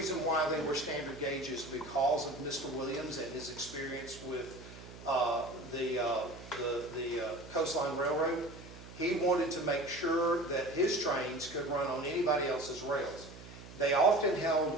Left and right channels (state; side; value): noise; right; hum, 16 dB below the sound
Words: why they were standard gauge is because of Mr. Williams and his experience with the Coastline Railroad. He wanted to make sure that his trains could run on anybody else's rails. They often